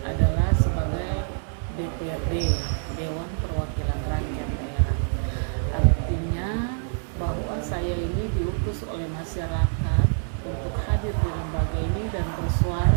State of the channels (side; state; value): left; silent; digital silence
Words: adalah sebagai DPRD, Dewan Perwakilan Rakyat Daerah. Artinya bahwa saya ini diutus oleh masyarakat untuk hadir di lembaga ini dan